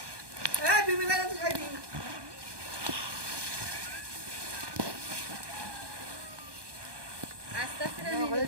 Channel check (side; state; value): left; late; 1.2 ms